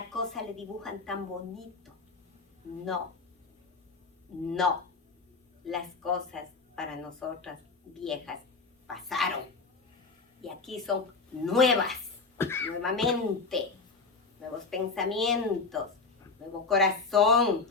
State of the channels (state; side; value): quieter; right; 4.2 dB